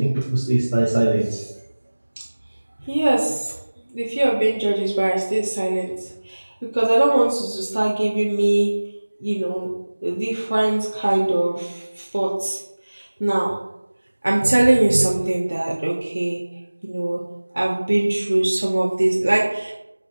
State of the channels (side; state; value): both; inverted; correlation -1.00